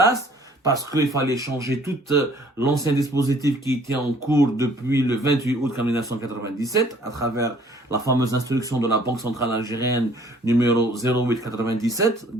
parce qu'il fallait changer tout l'ancien dispositif qui était en cours depuis le 28 août 1997 à travers la fameuse instruction de la Banque centrale algérienne numéro 0897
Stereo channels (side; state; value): both; normal; correlation 0.57